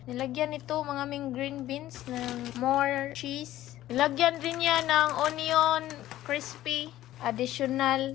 Nilagyan ito mga aming green beans ng more cheese. Nilagyan din niya ng onion crispy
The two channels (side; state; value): right; quieter; 14.3 dB